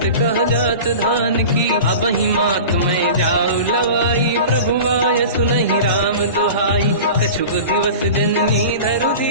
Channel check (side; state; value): both; inverted; correlation -0.35